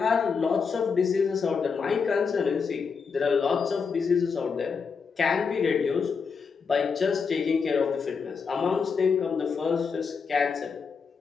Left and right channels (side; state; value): right; quieter; 5.5 dB